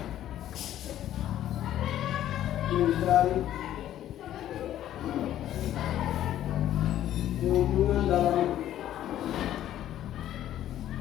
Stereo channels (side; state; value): right; quieter; 12.1 dB